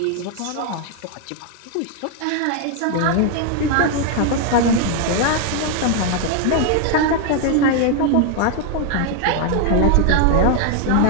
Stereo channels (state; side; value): different; both; correlation 0.00